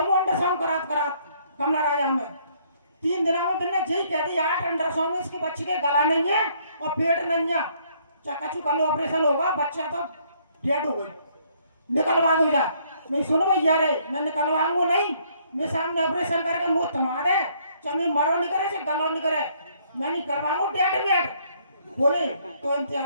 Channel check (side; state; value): both; inverted; correlation -0.66